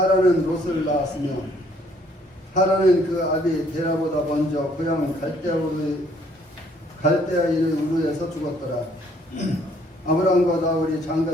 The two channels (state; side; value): normal; both; correlation 0.64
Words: 롯을 낳았으며 하란은 그 아비 데라보다 먼저 고향 갈대아인의 우르에서 죽었더라. 아브라함과 나홀이